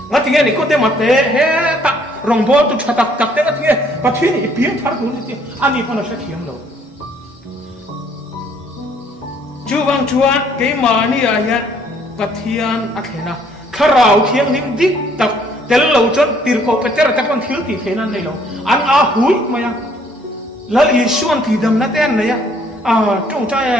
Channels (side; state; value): both; normal; correlation 0.63